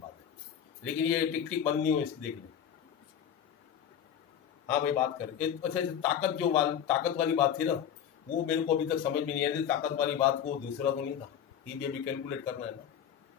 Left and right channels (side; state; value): right; quieter; 9.0 dB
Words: लेकिन ये टिक टिक बंद नहीं हो, इसकी देख ले। हाँ भाई बात कर। अच्छा, ताकत वाली बात थी ना, वो मेरे को अभी तक समझ में नहीं आई। ताकत वाली बात को दूसरा तो नहीं था, ये भी अभी कैलकुलेट करना है ना।